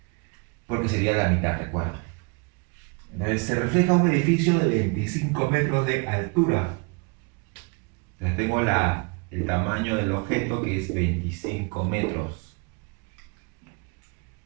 Porque sería la mitad, recuerda. Entonces se refleja un edificio de 25 metros de altura. Entonces tengo el tamaño del objeto, que es 25 metros.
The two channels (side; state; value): left; quieter; 31.6 dB